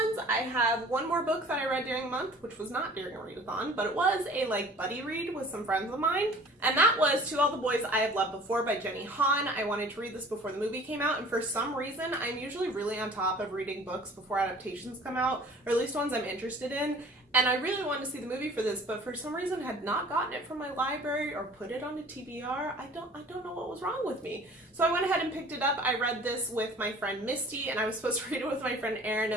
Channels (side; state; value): both; normal; correlation 0.48